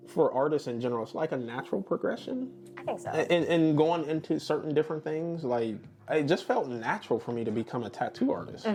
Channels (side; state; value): both; identical; correlation 1.00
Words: for artists in general, it's like a natural progression. I think so. And going into certain different things, it just felt natural for me to become a tattoo artist,